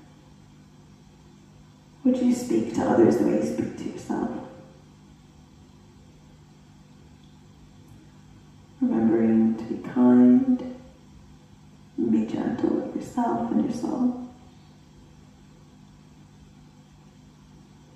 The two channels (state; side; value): identical; both; correlation 1.00